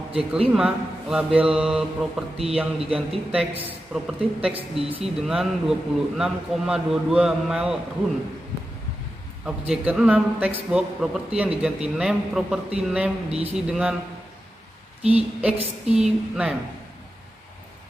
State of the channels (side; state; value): both; normal; correlation 0.91